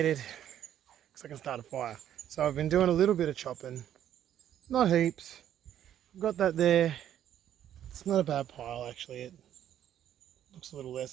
because I can start a fire. So I've been doing a little bit of chopping, not heaps. I've got that there. It's not a bad pile actually. It looks a little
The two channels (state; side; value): quieter; left; 10.8 dB